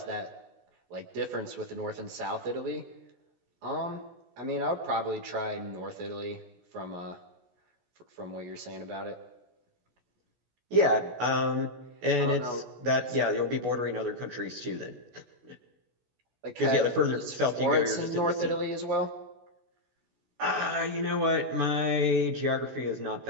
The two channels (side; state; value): left; late; 16 ms